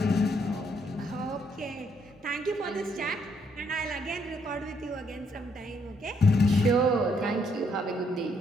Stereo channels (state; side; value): normal; both; correlation 0.72